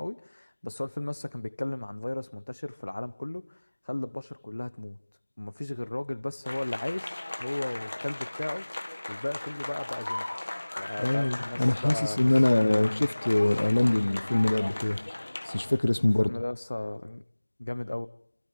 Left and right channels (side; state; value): both; inverted; correlation -1.00